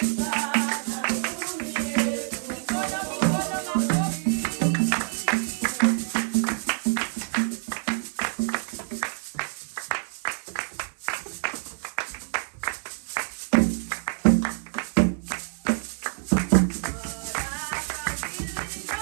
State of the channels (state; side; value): silent; left; 60 dB below the other